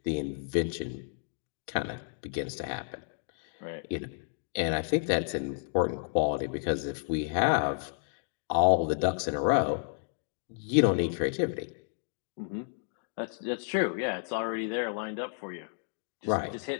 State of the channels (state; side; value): silent; right; digital silence